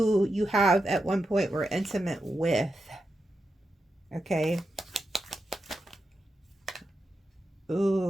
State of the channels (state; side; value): normal; both; correlation 0.88